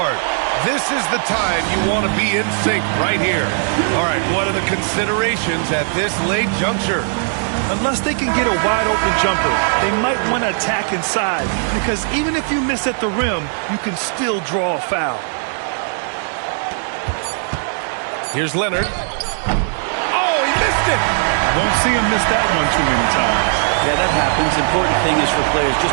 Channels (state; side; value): silent; left; 67 dB below the other